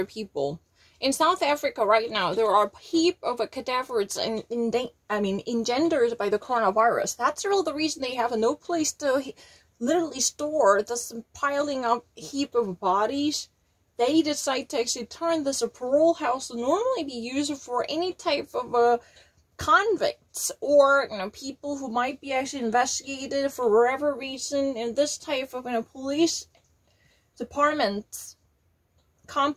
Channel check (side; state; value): both; identical; correlation 1.00